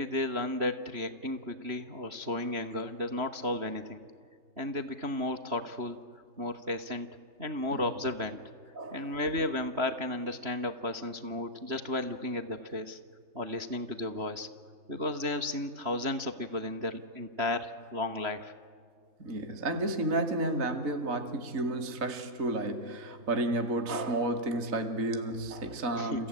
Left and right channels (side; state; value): left; late; 3.0 ms